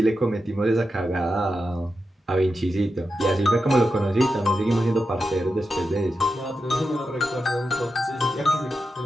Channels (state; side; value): normal; both; correlation 0.89